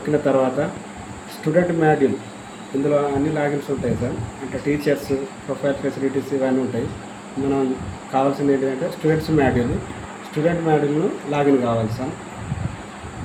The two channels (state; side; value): identical; both; correlation 1.00